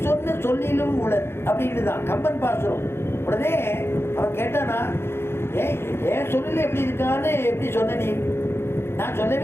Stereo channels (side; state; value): right; late; 0.12 ms